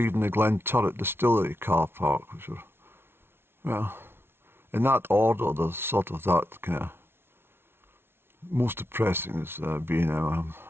the Glen Turret Distillery car park, which are, well, in that order, there's sort of that kind of most depressing is B&M,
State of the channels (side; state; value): left; late; 0.11 ms